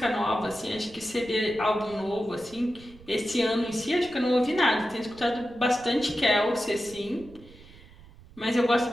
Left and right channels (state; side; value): noise; right; rumble, 22 dB below the sound